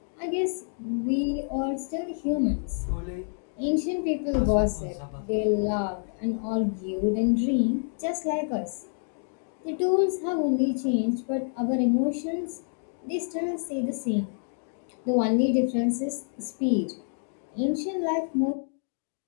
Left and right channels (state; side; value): silent; right; digital silence